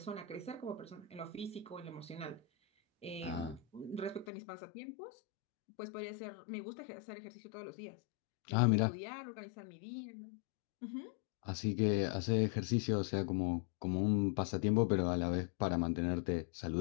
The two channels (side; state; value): right; drops out; at 4.2 s